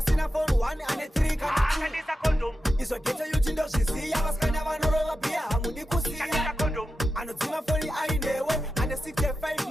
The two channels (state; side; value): normal; both; correlation 0.90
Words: phone 1 ane 3 kana 2 izvo geto yuchindozviziya vasikana vanorova bhiya hamundi kusiya anodzima foni ainewe ane 65